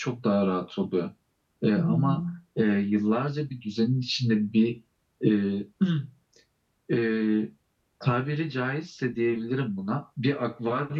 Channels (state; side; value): identical; both; correlation 1.00